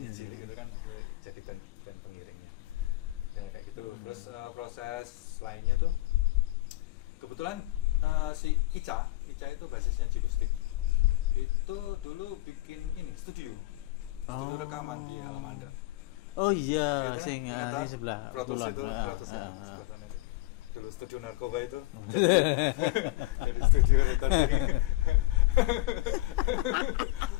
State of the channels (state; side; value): quieter; right; 18.6 dB